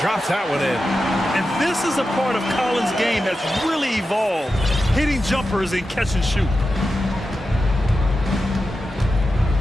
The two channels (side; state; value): both; normal; correlation 0.91